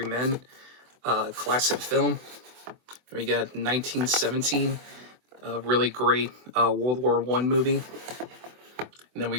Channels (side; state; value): left; late; 24 ms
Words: Men, classic film. We got 1917, a really great World War I movie. And then